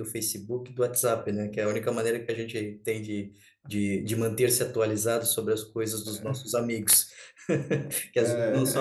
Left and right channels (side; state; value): both; identical; correlation 1.00